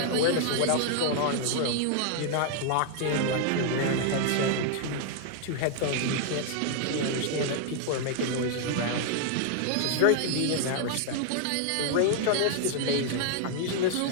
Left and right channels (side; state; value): both; different; correlation 0.00